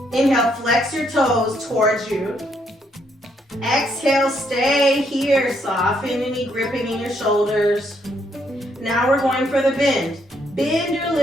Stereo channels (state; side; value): normal; both; correlation 0.73